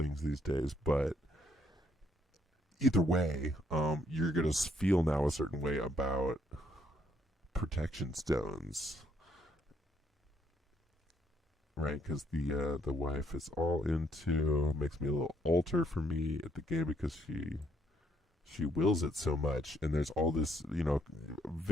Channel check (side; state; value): both; normal; correlation 0.71